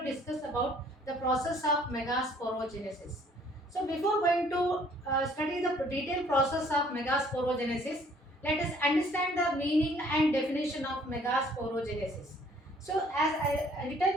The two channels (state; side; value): normal; both; correlation 0.59